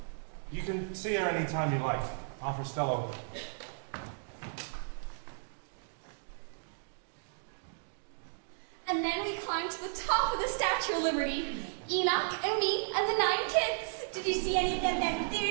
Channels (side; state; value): left; silent; digital silence